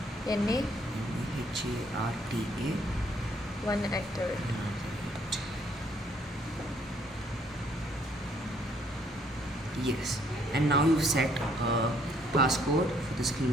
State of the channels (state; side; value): normal; both; correlation 0.66